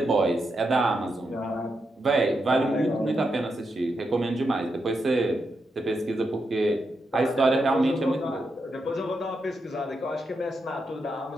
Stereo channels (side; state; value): both; normal; correlation 0.84